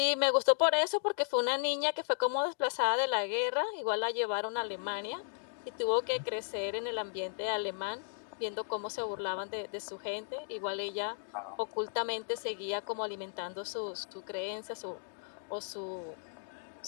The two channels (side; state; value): right; silent; digital silence